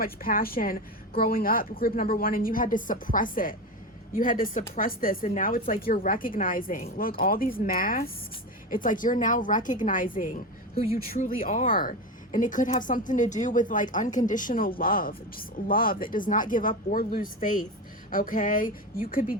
passion growing up, group number 1, and you had to suppress it. You had to suppress this, and now it's like you're recognizing, look, all these masks, it's like you're now recognizing who you truly are. And it could have something to do with like unconditional love, just love that does not give up or lose faith. Okay, you could be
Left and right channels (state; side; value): normal; both; correlation 0.21